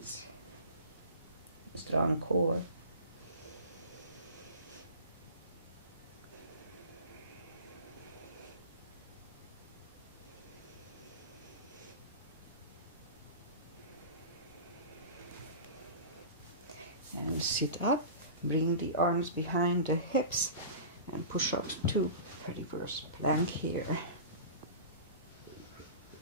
Strong core. And sit up, bring the arms behind the hips and push up to reverse plank here.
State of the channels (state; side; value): inverted; both; correlation -0.33